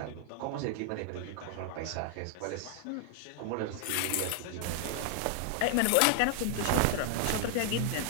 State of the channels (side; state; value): both; different; correlation 0.00